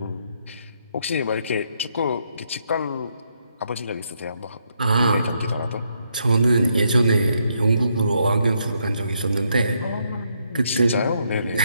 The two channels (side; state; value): both; inverted; correlation -0.76